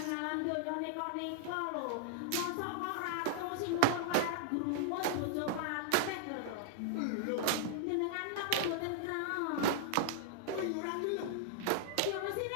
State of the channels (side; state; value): both; different; correlation -0.01